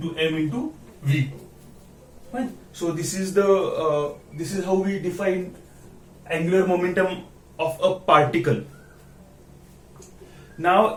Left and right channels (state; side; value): identical; both; correlation 1.00